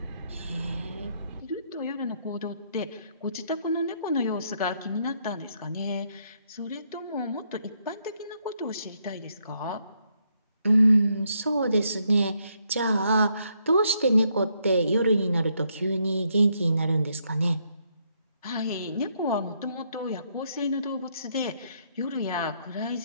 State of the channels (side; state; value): both; inverted; correlation -0.75